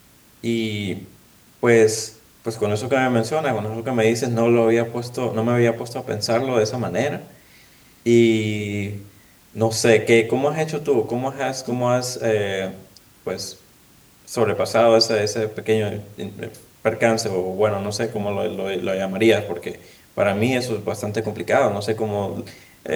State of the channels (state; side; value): identical; both; correlation 1.00